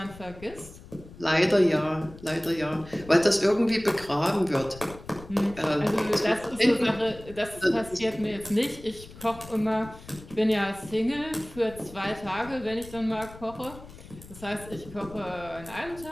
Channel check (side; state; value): left; noise; rumble, 18 dB below the sound